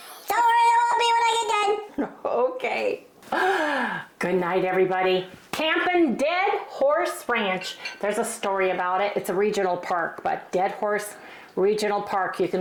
Don't worry, it won't be when I get done. Okay. Good night, everybody. Camping Dead Horse Ranch. There's a story about it. It's a regional park, but Dead Horse Regional Park. You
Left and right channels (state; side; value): identical; both; correlation 1.00